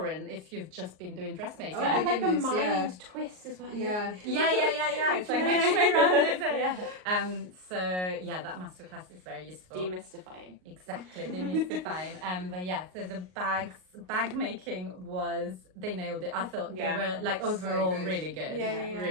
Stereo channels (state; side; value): late; left; 38 ms